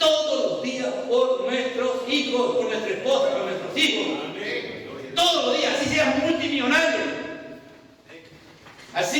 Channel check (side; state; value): both; identical; correlation 1.00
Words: los días por nuestros hijos, por nuestra esposa, por nuestros hijos. Todos los días, así seas multimillonario.